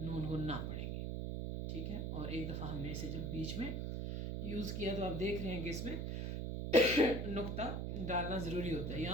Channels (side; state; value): right; noise; hum, 2 dB below the sound